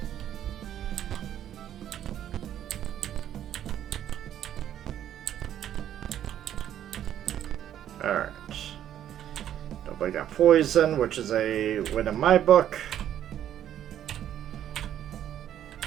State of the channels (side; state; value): left; quieter; 10.8 dB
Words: Alright. Nobody got poison, which is a win in my book.